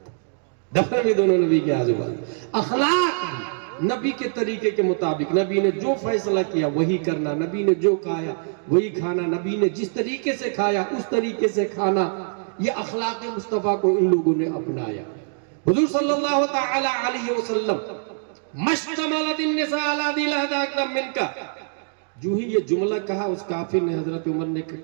دفن بھی دونوں نبی کے آزو بازو۔ اخلاق بھی نبی کے طریقے کے مطابق، نبی نے جو فیصلہ کیا وہی کرنا، نبی نے جو کھایا وہی کھانا، نبی نے جس طریقے سے کھایا اس طریقے سے کھانا، یہ اخلاق مصطفیٰ کو ان لوگوں نے اپنایا۔ حضور صلی اللہ تعالی علیہ وسلم مشتملت النساء علی ذی لہدہ اکرم منکا، جو ہی یہ جملہ کہا اس کافر نے، حضرت عمر نے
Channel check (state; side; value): silent; left; 63 dB below the other